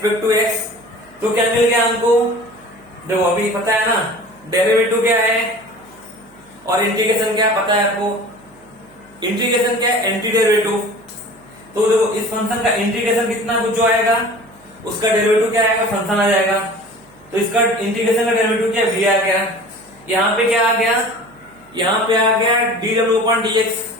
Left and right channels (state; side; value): noise; right; hum, 28 dB below the sound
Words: टू x, तो क्या मिल गया हमको, देखो अभी पता है ना डेरिवेटिव क्या है और इंटीग्रेशन क्या पता है आपको, इंटीग्रेशन क्या है, एंटी डेरिवेटिव। तो देखो इस फंक्शन का इंटीग्रेशन कितना कुछ जो आएगा उसका डेरिवेटिव क्या आएगा, फंक्शन आ जाएगा। तो इसका इंटीग्रेशन का डेरिवेटिव क्या v आ गया, यहाँ पे क्या आ गया, यहाँ पे आ गया dw अपॉन dx।